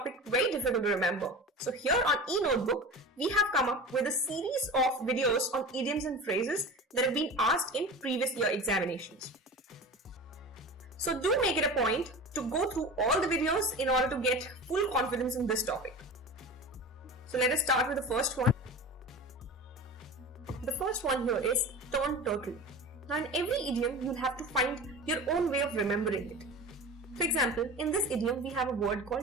very difficult to remember. So here on e-notebook, we have come up with a series of videos on idioms and phrases that have been asked in previous year examinations. So do make it a point to go through all the videos in order to get full confidence in this topic. So let us start with the first one. The first one here is turn turtle. Now in every idiom, you'll have to find your own way of remembering it. For example, in this idiom, we have a word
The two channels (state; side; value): normal; both; correlation 0.33